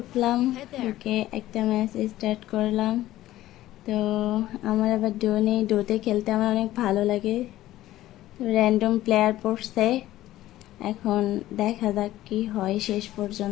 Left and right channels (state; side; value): quieter; right; 14.9 dB